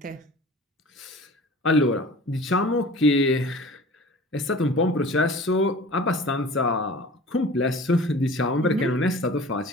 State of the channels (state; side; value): normal; both; correlation 0.42